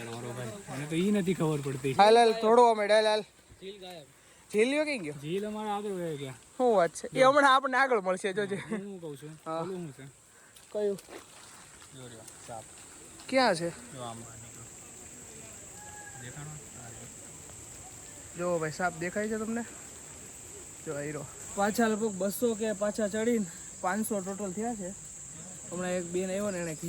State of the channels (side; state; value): both; identical; correlation 1.00